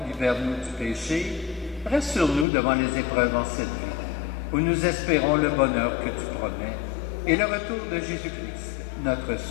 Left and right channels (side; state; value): right; drops out; at 2.5 s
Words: libère-nous du péché, rassure-nous devant les épreuves en cette vie, où nous espérons le bonheur que tu promets, et le retour de Jésus-Christ, notre